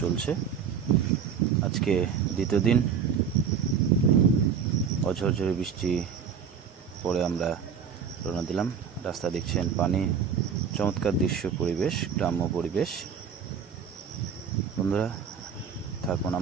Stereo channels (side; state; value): left; quieter; 7.1 dB